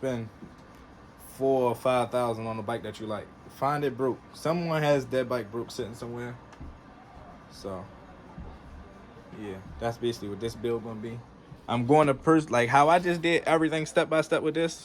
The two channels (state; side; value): identical; both; correlation 1.00